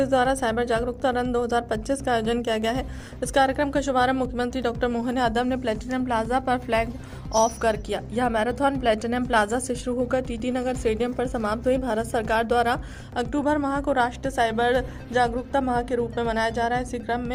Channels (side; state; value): both; identical; correlation 1.00